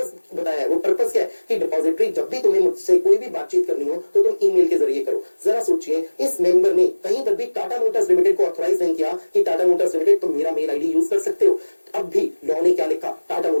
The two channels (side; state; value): both; inverted; correlation -1.00